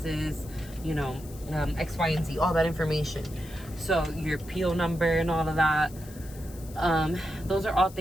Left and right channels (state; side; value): noise; left; hiss, 19 dB below the sound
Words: you know, X, Y, and Z, all that information. So your PO number and all of that, those are all